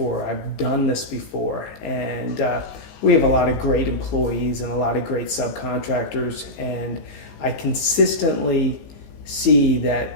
I've done this before. And we have a lot of great employees and a lot of great subcontractors, and I consistently see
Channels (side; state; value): right; late; 19 ms